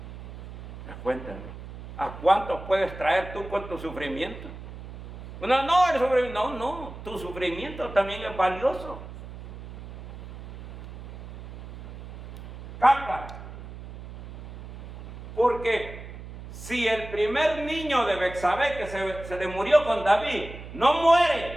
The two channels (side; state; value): right; noise; hum, 13 dB below the sound